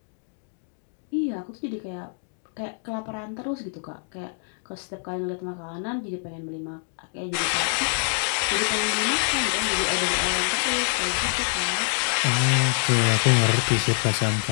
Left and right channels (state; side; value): silent; right; 58 dB below the other